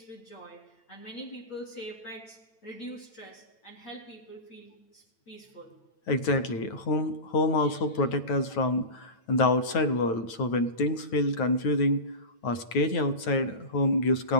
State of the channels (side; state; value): right; late; 9.0 ms